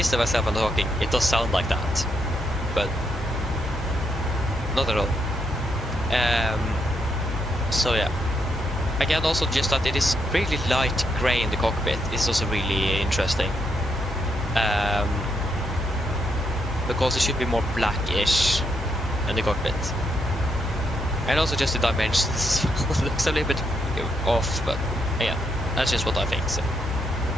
to myself and talking, it does sound like that, but not at all. So yeah. Again, also just that it is really light grey in the cockpit is also really interesting. Because it should be more blackish in the cockpit. And also just the dimensions looks a little bit off, but yeah, that's just what I think. So.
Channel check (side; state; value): both; normal; correlation 0.78